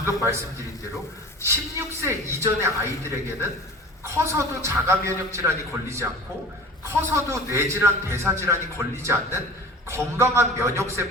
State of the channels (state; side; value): normal; both; correlation 0.39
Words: 말씀드린 대로 16세 이전의 아이들에게는 커서도 자가 면역 질환이 걸리지 않고 커서도 뇌질환, 대사질환이 걸리지 않는 건강한